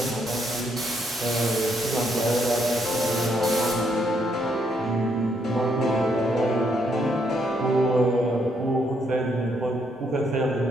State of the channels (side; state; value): both; normal; correlation 0.74